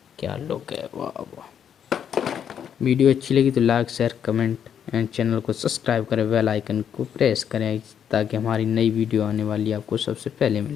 क्या लुक है, वाह वाह। वीडियो अच्छी लगी तो like, share, comment and channel को सब्सक्राइब करें, बेल आइकन को प्रेस करें ताकि हमारी नई वीडियो आने वाली आपको सबसे पहले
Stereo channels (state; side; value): quieter; right; 8.6 dB